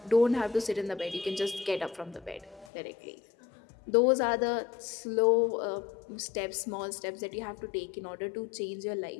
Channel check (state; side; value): drops out; right; at 2.7 s